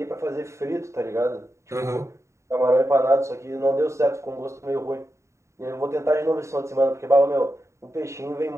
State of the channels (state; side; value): late; left; 0.14 ms